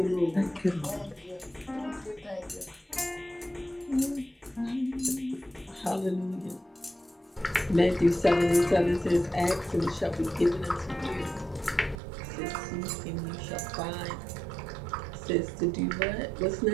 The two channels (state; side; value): drops out; left; at 12.0 s